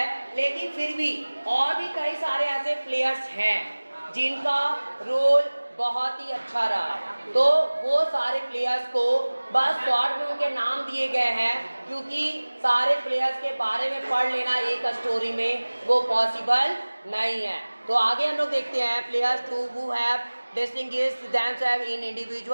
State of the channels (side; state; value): both; inverted; correlation -1.00